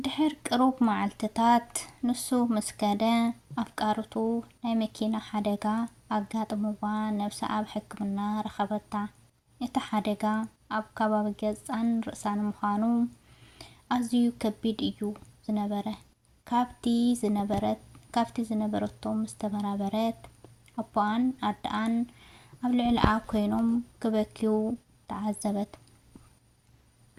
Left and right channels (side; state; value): both; identical; correlation 1.00